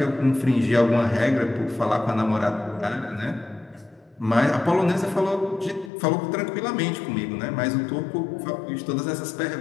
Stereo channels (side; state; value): right; drops out; at 5.9 s